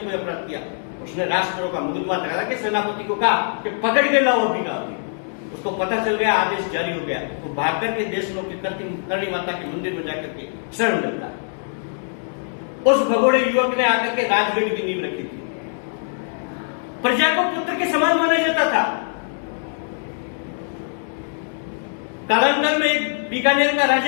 कोई अपराध किया, उसने राष्ट्रद्रोह का मुकदमा लगा के सेनापति को कहा कि पकड़ के लाओ अभी का अभी। उसको पता चल गया, आदेश जारी हो गया, तो भाग करके देशनों की करणी माता के मंदिर में जाकर के शरण लेता। उस भगोड़े युवक ने आकर के राजगढ़ की नींव रखी थी। प्रजा को पुत्र के समान माना जाता था। कालांतर में एक बीकानेर का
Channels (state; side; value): silent; right; digital silence